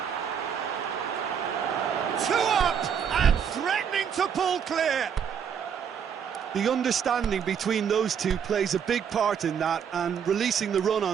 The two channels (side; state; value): left; quieter; 7.7 dB